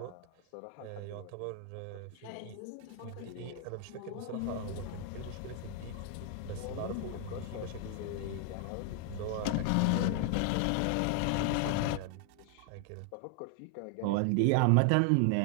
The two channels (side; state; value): both; different; correlation 0.00